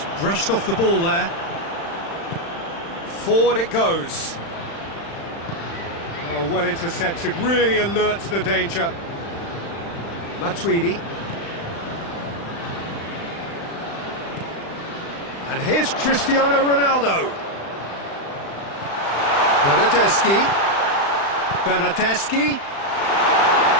brushed off the ball there. Forward it goes. Oh, well intercepted, really alert to the danger. Matuidi. And here's Cristiano Ronaldo. Bernardeschi.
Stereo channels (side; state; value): right; late; 35 ms